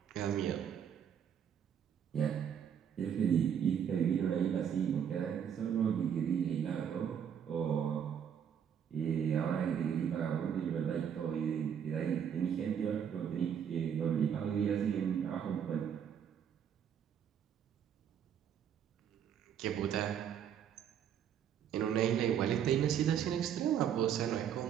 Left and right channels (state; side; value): quieter; left; 8.5 dB